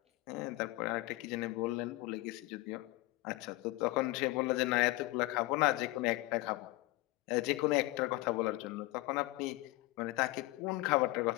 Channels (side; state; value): right; quieter; 20.2 dB